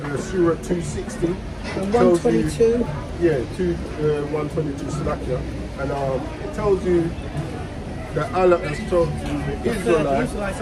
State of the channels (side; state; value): both; identical; correlation 1.00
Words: Surah 260, And tells you, 122. yeah, 122 Salakia, and it tells you that Allah has told the Israelites,